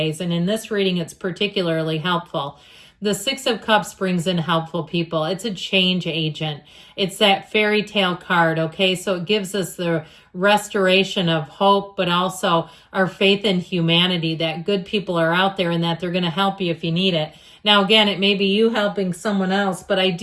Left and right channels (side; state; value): both; identical; correlation 1.00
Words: And in this reading, it's particularly helpful. The Six of Cups brings in helpful people. It's a change agent. It's that fairy tale card, okay? So it gives us the restoration of hope, but also our faith in humanity, that good people are out there and that they're going to help you if you need it. Now, again, it may be you helping someone else, but I